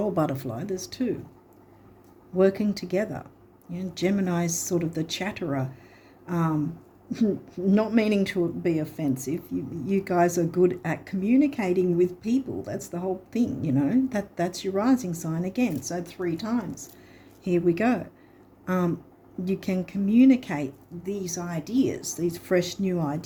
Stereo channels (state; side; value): identical; both; correlation 1.00